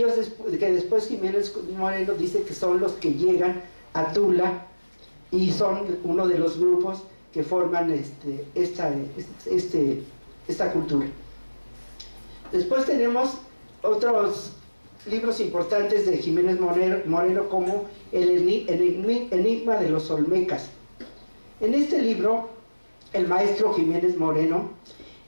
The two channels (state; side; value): inverted; both; correlation -1.00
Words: después Jiménez Moreno dice que son los que llegan a Tula y son uno de los grupos que forman esta cultura. Después tenemos otros libros importantes de Jiménez Moreno, como el Enigma de los Olmecas. En este libro, el maestro Jiménez Moreno